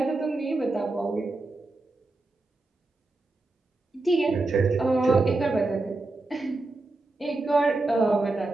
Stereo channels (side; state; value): left; quieter; 3.1 dB